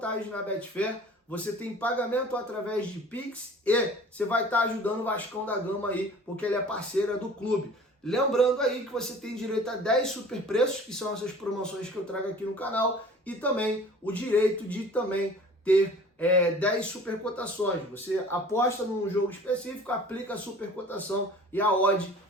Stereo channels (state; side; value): normal; both; correlation 0.46